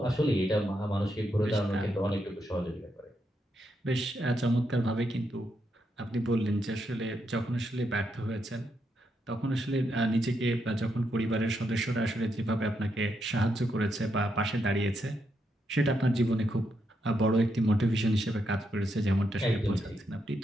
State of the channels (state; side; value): normal; both; correlation 0.81